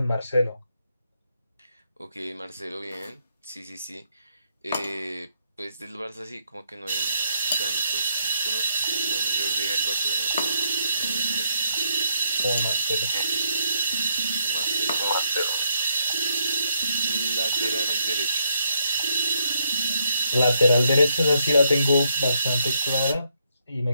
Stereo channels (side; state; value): both; inverted; correlation -0.77